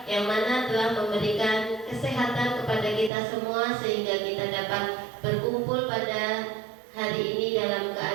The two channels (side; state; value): left; drops out; at 3.1 s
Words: yang mana telah memberikan kesehatan kepada kita semua sehingga kita dapat berkumpul pada hari ini dalam